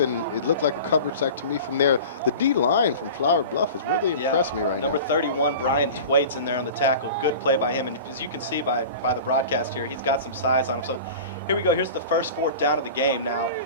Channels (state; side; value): inverted; both; correlation -0.36